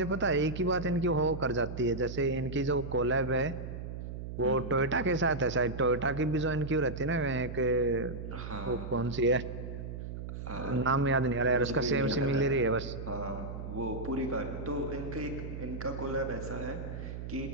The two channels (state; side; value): noise; right; hum, 8 dB below the sound